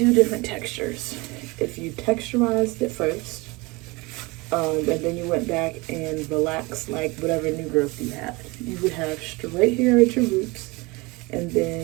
different textures. If you texturized it first, and then you went back and relaxed like whatever new growth you had, you would have straight hair at your roots and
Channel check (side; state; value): left; quieter; 24.6 dB